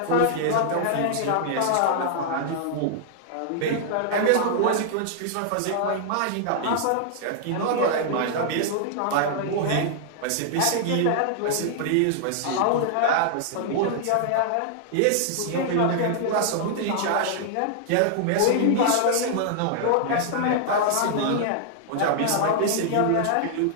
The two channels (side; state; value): both; different; correlation -0.01